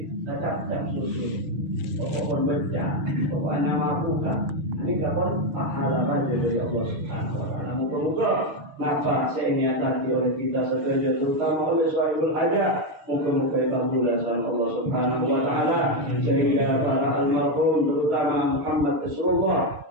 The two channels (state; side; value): late; left; 6.6 ms